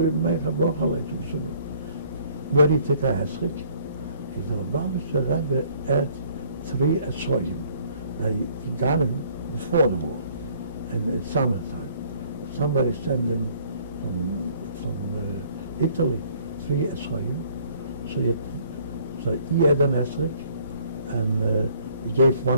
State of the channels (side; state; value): both; inverted; correlation -0.60